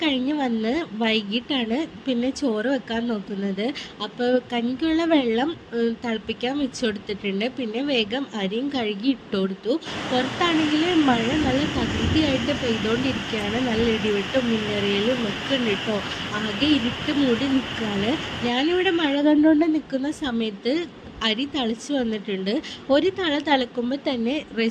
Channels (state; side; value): identical; both; correlation 1.00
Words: കഴിഞ്ഞ് വന്ന് വൈകിട്ടാണ് പിന്നെ ചോറ് വെക്കാൻ നോക്കുന്നത്. അപ്പോൾ കഞ്ഞിക്കുള്ള വെള്ളം തിളപ്പിക്കാൻ വെച്ച് കൊടുത്തിട്ടുണ്ട്. പിന്നെ വേഗം അരിയും കഴുകി ഇട്ട് കൊടുത്തു. പുറത്താണെങ്കിൽ മഴ നല്ല തകൃതിയായിട്ട് പെയ്തുകൊണ്ടിരിക്കുകയാണ്. നല്ല ഇടിവെട്ടും മിന്നറിയലും ഒക്കെ ഉണ്ട് കേട്ടോ. ആകെ ഇരുട്ട് മൂടി നിൽക്കുകയാണ്. ഞാനിവിടെ മഴ കണ്ടുകൊണ്ട് നിൽക്കുന്ന സമയത്ത് അരി തിളച്ച് വന്നിട്ടുണ്ട്. ഒരു തിളക്കുമ്പോൾ തന്നെ